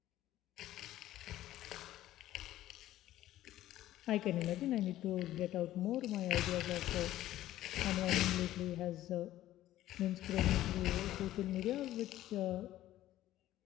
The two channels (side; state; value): right; quieter; 14.1 dB